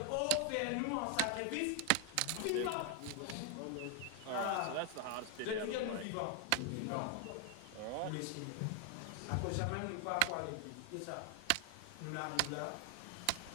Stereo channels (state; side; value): different; both; correlation 0.00